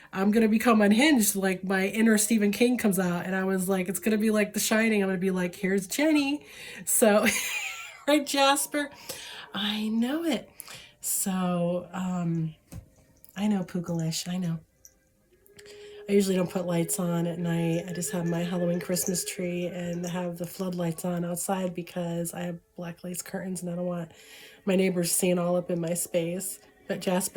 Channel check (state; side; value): identical; both; correlation 1.00